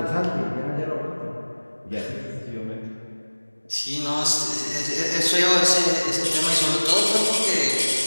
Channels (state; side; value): inverted; both; correlation -1.00